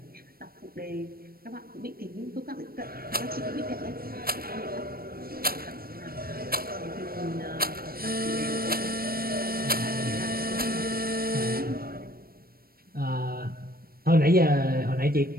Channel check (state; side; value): late; left; 0.44 ms